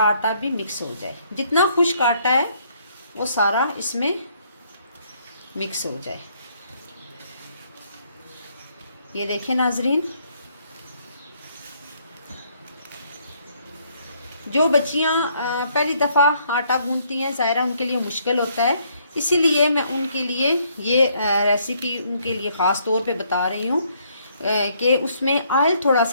आटा भी मिक्स हो जाए। जितना खुश्क आटा है वो सारा इसमें मिक्स हो जाए। ये देखें नाजरीन, जो बच्चियां पहली दफ़ा आटा गूंथती हैं, ज़ाहिरा उनके लिए मुश्किल होता है, इसीलिए मैं उनके लिए ये रेसिपी उनके लिए ख़ास तौर पे बता रही हूँ कि उसमें ऑयल थोड़ा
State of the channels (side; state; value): both; inverted; correlation -0.68